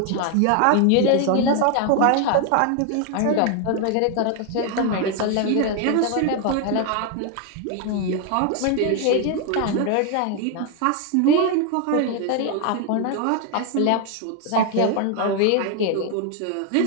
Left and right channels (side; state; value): both; different; correlation 0.01